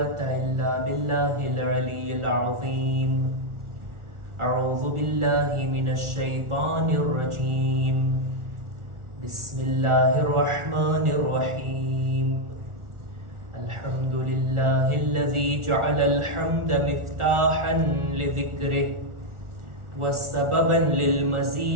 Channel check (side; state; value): left; late; 1.4 ms